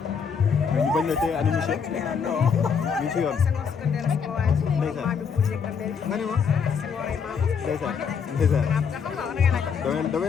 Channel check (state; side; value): quieter; right; 6.4 dB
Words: mais ñu bañ la tey ana monsieur. ñu ci yoon. ndeysaan. nga ne ma. ndeysaan. damay